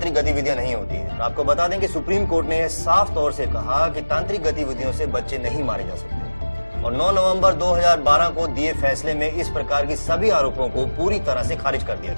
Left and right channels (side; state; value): both; inverted; correlation -1.00